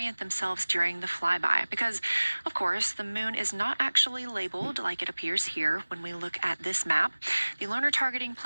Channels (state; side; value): inverted; both; correlation -1.00